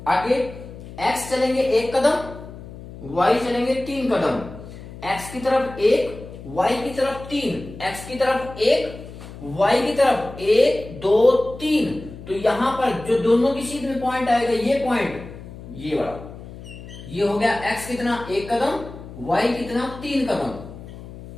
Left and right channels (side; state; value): left; noise; hum, 14 dB below the sound